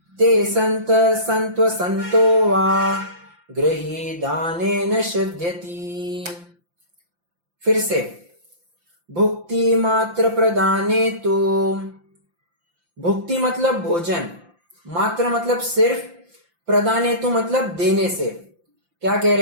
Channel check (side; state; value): left; late; 5.8 ms